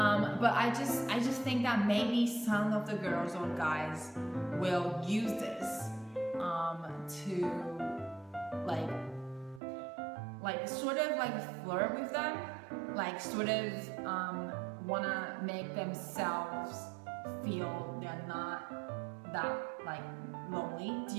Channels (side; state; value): left; drops out; at 9.6 s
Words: I just think that maybe some of the girls or guys will use this to like sort of like flirt with them, like sort of wanna make themselves feel they're not that like lonely. Do